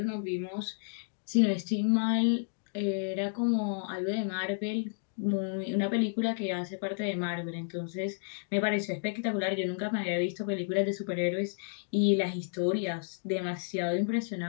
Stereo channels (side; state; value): right; silent; digital silence